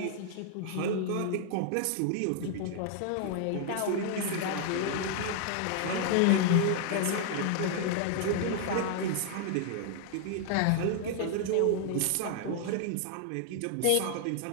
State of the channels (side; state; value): both; different; correlation 0.00